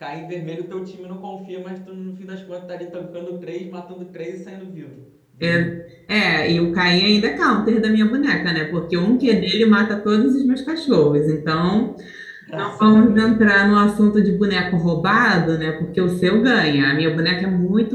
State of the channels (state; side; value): identical; both; correlation 1.00